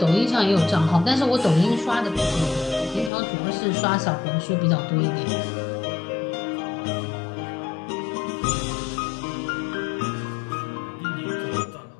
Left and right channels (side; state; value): right; drops out; at 3.1 s